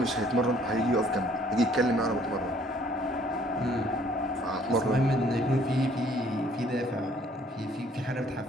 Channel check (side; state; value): both; normal; correlation 0.60